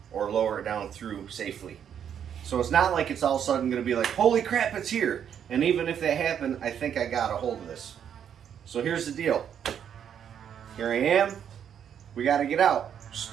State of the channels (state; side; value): quieter; left; 8.7 dB